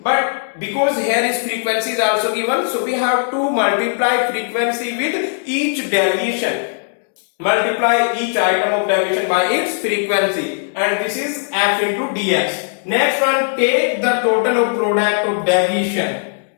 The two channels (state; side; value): silent; right; digital silence